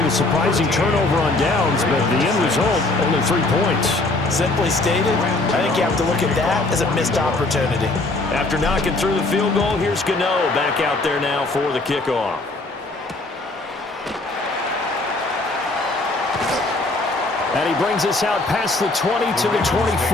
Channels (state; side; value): quieter; right; 3.0 dB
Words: the surprising turnover on downs, but the end result, only 3 points. Simply stated, I think you have to look at that as a missed opportunity. After knocking through the field goal, here's Gano back out there now for the kickoff. And he brings us out past the 20 to the 24.